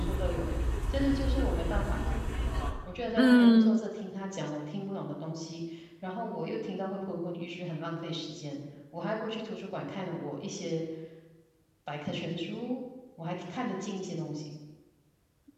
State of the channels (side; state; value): both; identical; correlation 1.00